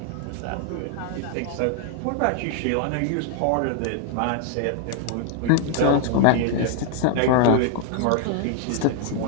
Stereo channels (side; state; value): both; different; correlation -0.01